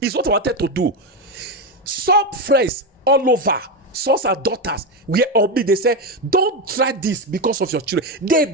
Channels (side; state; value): both; normal; correlation 0.12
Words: It's what I wanted to do. Some friends all over, sons and daughters, were on me. They say, don't try this because of your children.